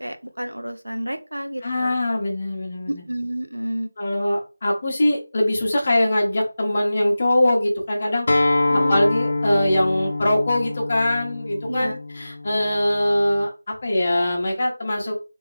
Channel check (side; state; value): both; inverted; correlation -0.96